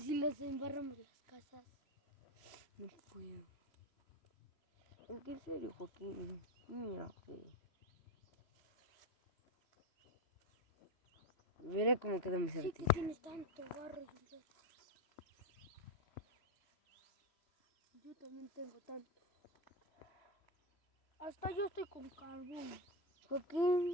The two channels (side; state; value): right; late; 3.0 ms